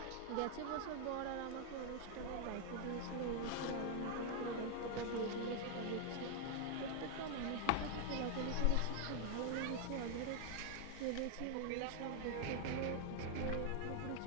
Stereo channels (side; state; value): both; different; correlation 0.00